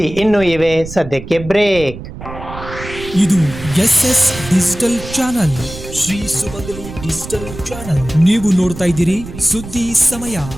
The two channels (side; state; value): right; noise; rumble, 12 dB below the sound